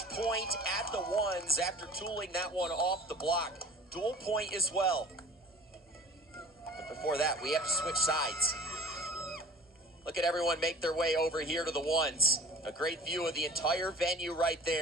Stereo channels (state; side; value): normal; both; correlation 0.45